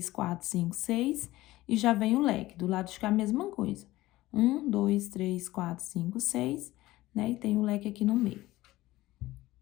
4, 5, 6 e já vem o leque. Do lado de cá a mesma coisa. 1, 2, 3, 4, 5, 6, né? E tem o leque aqui no meio.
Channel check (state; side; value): quieter; right; 17.4 dB